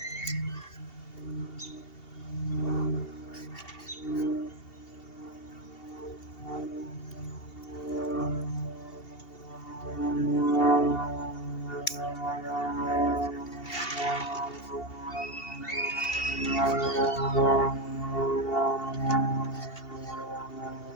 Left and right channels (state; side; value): late; right; 2.7 ms